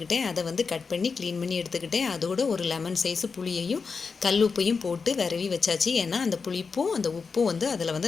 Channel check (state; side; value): quieter; right; 5.1 dB